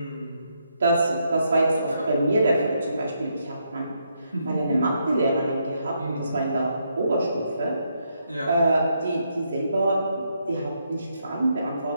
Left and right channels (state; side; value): inverted; both; correlation -0.78